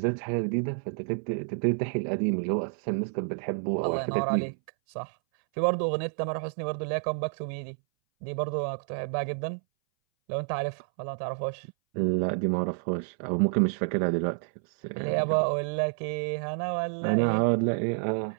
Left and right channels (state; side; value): silent; left; 59 dB below the other